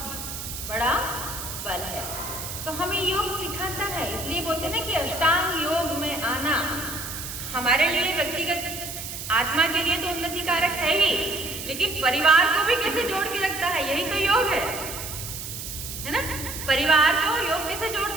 बड़ा बल है। तो हमें योग सिखाता है, इसलिए बोलते ना कि अष्टांग योग में आना हमारे लिए व्यक्तिगत आत्मा के लिए तो उन्नति कारक है ही, लेकिन परिवार को भी कैसे जोड़ के रखता है, यही तो योग है ना। परिवार को योग कैसे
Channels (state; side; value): noise; right; hiss, 8 dB below the sound